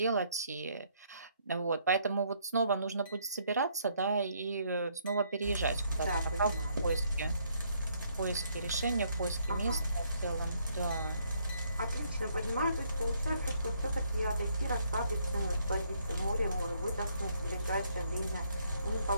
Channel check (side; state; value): both; inverted; correlation -0.70